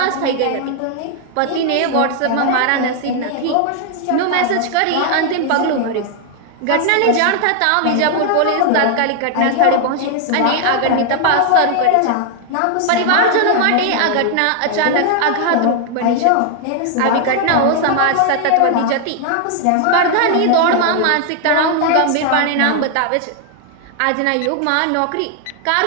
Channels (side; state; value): both; different; correlation 0.00